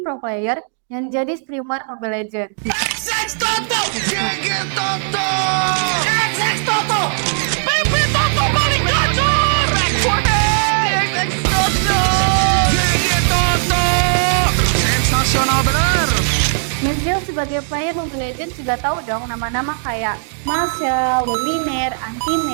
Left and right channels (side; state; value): left; silent; digital silence